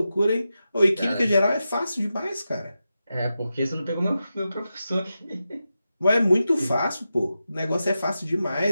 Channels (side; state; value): both; inverted; correlation -0.91